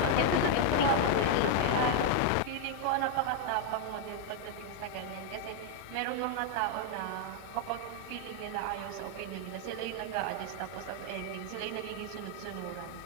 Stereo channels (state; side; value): different; both; correlation 0.00